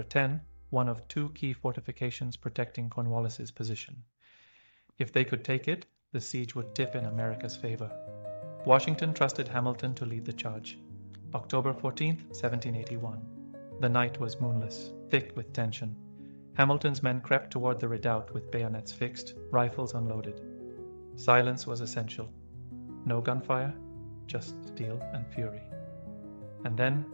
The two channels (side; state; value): both; inverted; correlation -1.00